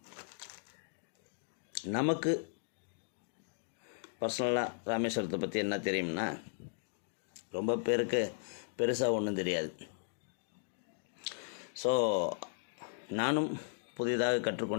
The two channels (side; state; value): right; silent; digital silence